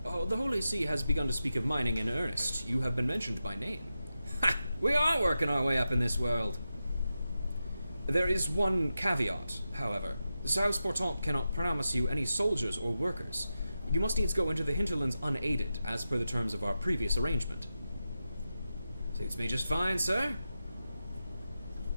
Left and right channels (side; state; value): both; inverted; correlation -0.90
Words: Oh, the Holy See has begun to speak of mining in earnest. You have been mentioned by name. Ha! We are working our way up in this world. There is one caveat, however. South Portant cannot promise you any soldiers or workers. You must needs go into the hinterlands unaided, as per the terms of our previous arrangement. Suits me just fine, sir.